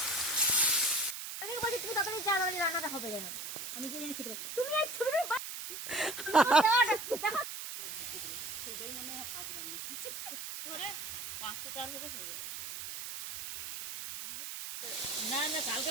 আমি বলি তুমি তাড়াতাড়ি চা মানে রান্নাটা হবে যেন আমি কি জানি খেতে পারি তুমি এই ছবিটা সবাই মনে হয় হাফ রান্না করে 5টা 4 থেকে হয়ে যাবে। না না কালকে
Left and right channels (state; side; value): noise; right; hiss, 7 dB below the sound